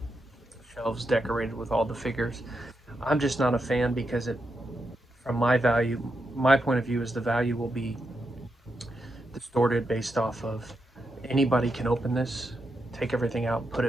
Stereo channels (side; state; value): both; normal; correlation 0.85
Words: shelves decorated with all the figures. I'm just not a fan because from my point of view is the value will be distorted based off of anybody can open this, take everything out, put